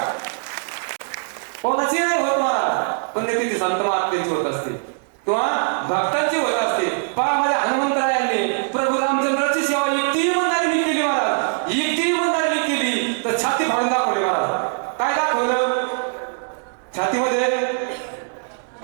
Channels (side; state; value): left; silent; digital silence